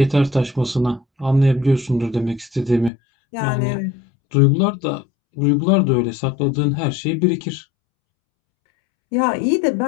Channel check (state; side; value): drops out; right; at 2.9 s